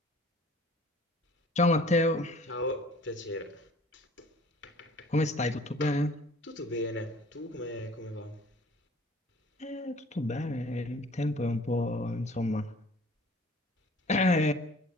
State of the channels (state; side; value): normal; both; correlation 0.50